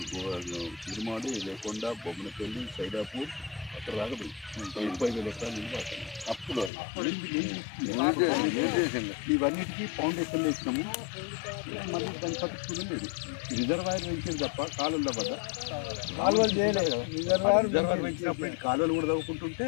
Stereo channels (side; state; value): right; drops out; at 6.7 s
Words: తిరుమాడి లేకొండ బొమ్మనపల్లి సైదాపూర్ అక్కడ దాకా పోయి 30,000 ఎకరాలు నీళ్ళు పడుతుంది. అప్పుడు ఇవన్నిటికీ ఫౌండేషన్లు వేసినాము. మళ్ళీ దాన్ని పట్టించుకుని లేదు. రిజర్వాయర్ పెంచింది తప్ప కాలువల వద్ద కాలువలు చేయలేదు కదా. రిజర్వాయర్ పెంచినప్పుడు కాలువలు కూడా తవ్వుకుంటుంటే